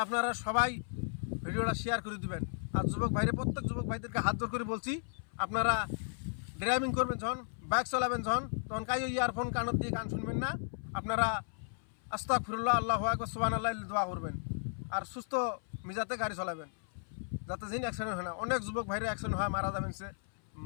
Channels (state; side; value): silent; right; 55 dB below the other